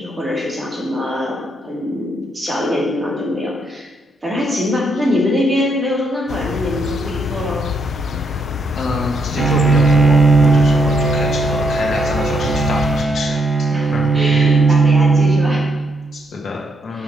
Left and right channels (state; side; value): normal; both; correlation 0.76